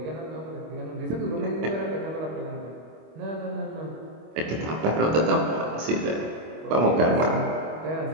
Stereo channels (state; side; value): late; left; 25 ms